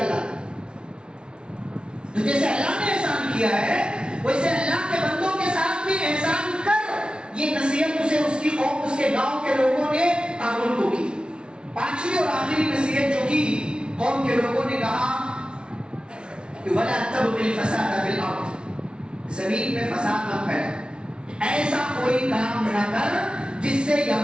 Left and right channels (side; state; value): left; late; 0.056 ms